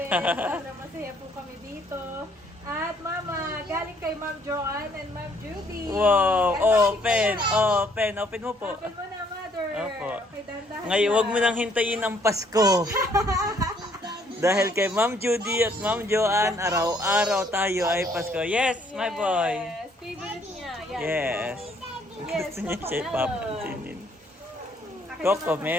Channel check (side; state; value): both; normal; correlation 0.65